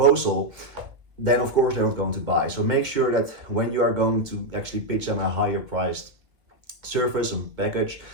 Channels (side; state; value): left; late; 1.9 ms